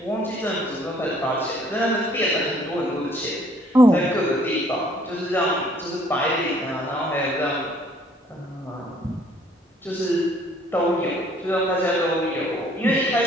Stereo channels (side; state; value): both; normal; correlation 0.60